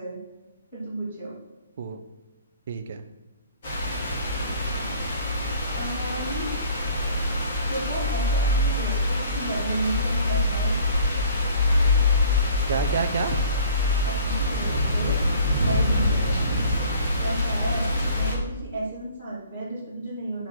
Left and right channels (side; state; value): both; inverted; correlation -0.52